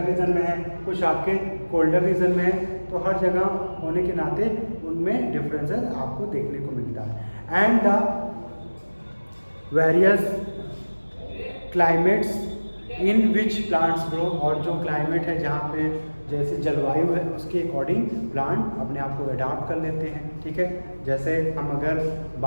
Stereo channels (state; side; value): inverted; both; correlation -1.00